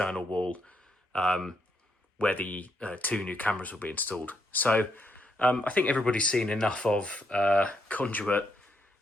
wall where the two new cameras will be installed. So I think everybody's seen enough of conduit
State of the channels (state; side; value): normal; both; correlation 0.77